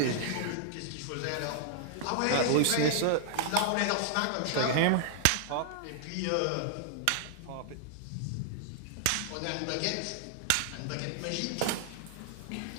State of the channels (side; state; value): both; different; correlation -0.01